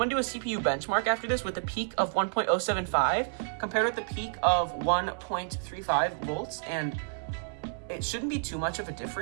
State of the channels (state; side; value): silent; left; 58 dB below the other